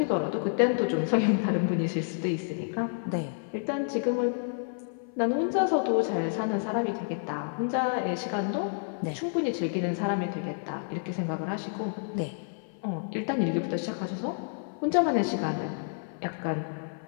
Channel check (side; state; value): right; silent; 56 dB below the other